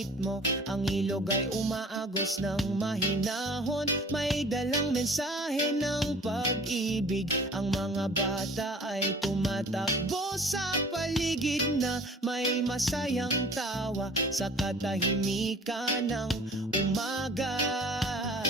ang ilog ay umaagos ng mahinahon, may dalang mensahe ng pag-ibig. Ang mga bata ay tumatakbo sa paligid na may masayang tawa sa katahimikan ng umaga.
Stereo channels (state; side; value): normal; both; correlation 0.47